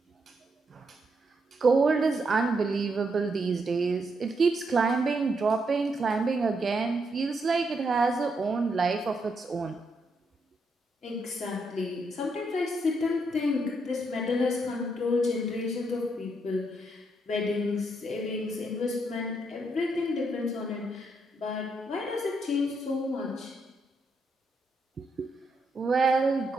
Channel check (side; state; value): both; normal; correlation 0.78